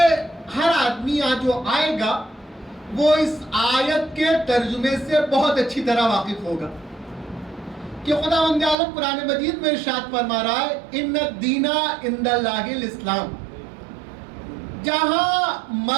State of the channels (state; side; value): drops out; left; at 8.8 s